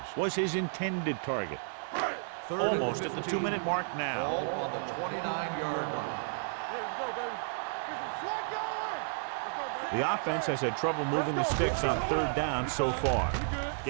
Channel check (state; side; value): silent; left; 56 dB below the other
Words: was his intended target. Almost at the 2-minute mark now. Ball on the 29-yard line. Let's go, baby. Get some slack going. Let's go, baby. The offense has had trouble moving the sticks on third down so far.